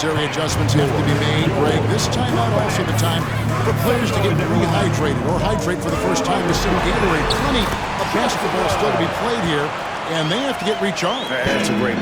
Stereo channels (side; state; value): both; identical; correlation 1.00